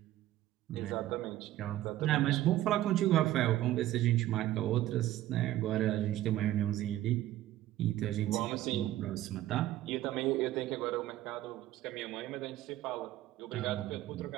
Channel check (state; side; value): quieter; left; 14.3 dB